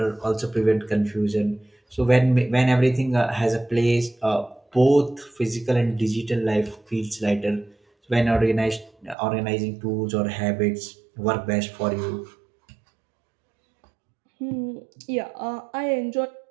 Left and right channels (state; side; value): drops out; left; at 9.2 s